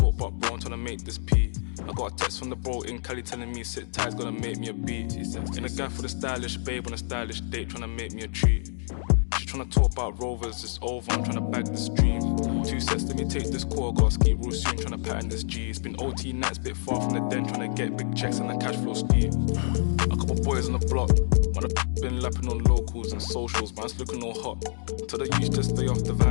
but bro, I'm trying to make this pee. I got a text from the bro in Cali telling me sit tight, gonna make me a beat. In a guy for the stylish babe on a stylish date, trying to make me a treat. She tryna talk about rovers, it's over, I'm tryna bag this dream. 2 sets, let me take this call, gotta ski real soon, tryna pattern this G. It's been OT nights, bit far from the den, tryna get big checks and the cash flow speed. A couple boys on the block, man, I've been lapping on locals and socials, man, it's looking all hot. Tell the youth just stay off the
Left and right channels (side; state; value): right; silent; digital silence